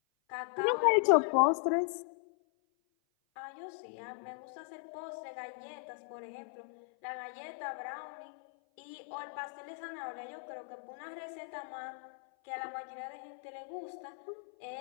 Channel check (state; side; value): silent; right; 53 dB below the other